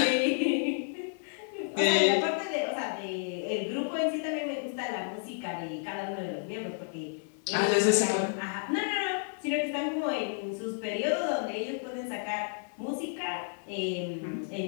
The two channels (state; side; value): silent; right; digital silence